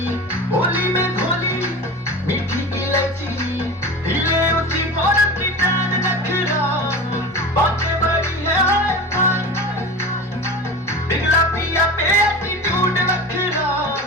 होली में घोली, मीठी इलायची, हिले ऊंची बॉर्डर की टांग नखरा, बातें बड़ी है पिघला पिया पे एटीट्यूड नखरा,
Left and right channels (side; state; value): both; normal; correlation 0.31